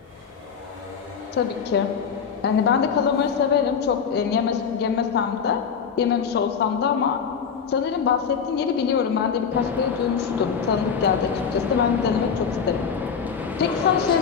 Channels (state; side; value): quieter; right; 6.6 dB